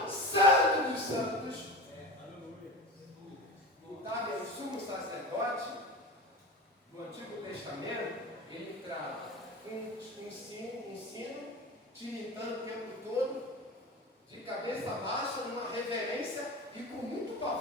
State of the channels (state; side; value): normal; both; correlation 0.30